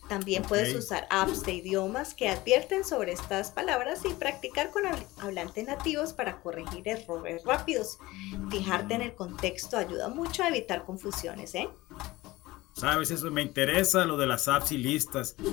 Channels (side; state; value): right; quieter; 19.3 dB